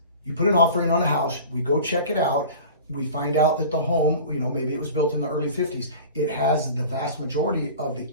put an offer in on a house, we go check it out, we find out that the home, maybe it was built in the early 50s, it has the vast majority of the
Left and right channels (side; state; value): both; inverted; correlation -0.39